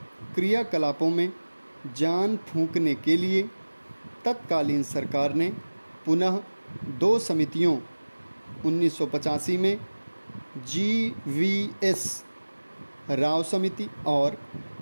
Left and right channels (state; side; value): inverted; both; correlation -1.00